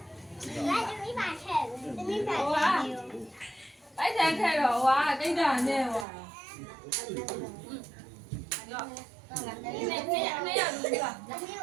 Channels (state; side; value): drops out; left; at 6.1 s